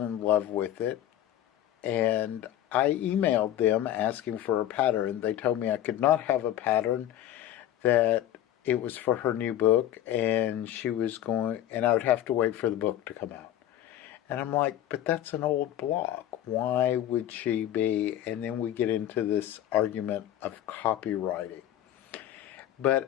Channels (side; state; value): right; quieter; 12.1 dB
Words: in love with it, and I emailed them asking for a pattern. They told me I could not have a pattern, that it was for her new book, and I would have to wait for the book to come out. And I'm like, but that's an old block. Why would she be? And then we get into this argument of copywriting.